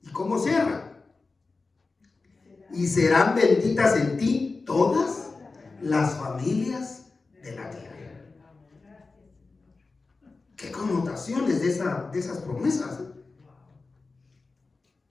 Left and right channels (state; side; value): quieter; right; 3.9 dB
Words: ¿Y cómo cierra? Y serán benditas en ti todas las familias de la tierra. ¿Qué connotaciones de esas promesas?